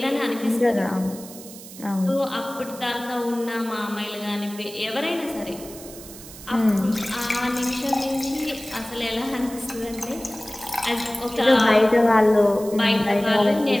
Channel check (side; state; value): right; noise; hiss, 16 dB below the sound